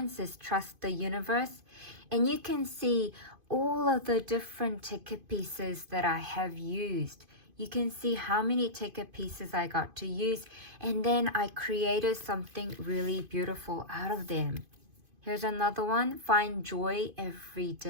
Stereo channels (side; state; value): left; late; 2.5 ms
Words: it says Trust the Universe. And you can see all of the different ticket pieces that I have used. You can see how many ticket pieces I got to use, and then I created something really beautiful out of them. Here's another one, Find Joy Every